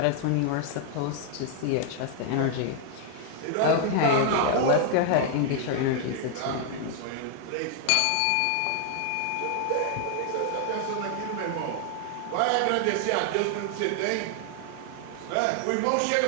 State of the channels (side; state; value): both; different; correlation 0.00